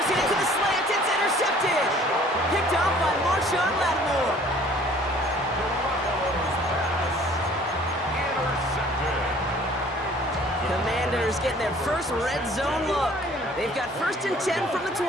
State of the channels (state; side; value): normal; both; correlation 0.54